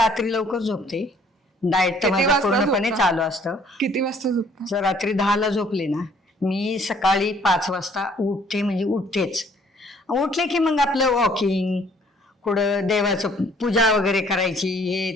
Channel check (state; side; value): normal; both; correlation 0.60